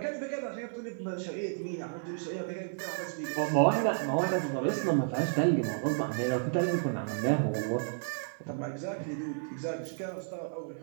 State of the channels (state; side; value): silent; left; digital silence